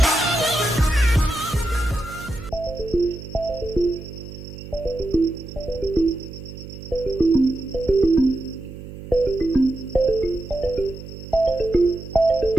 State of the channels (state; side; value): noise; right; hum, 13 dB below the sound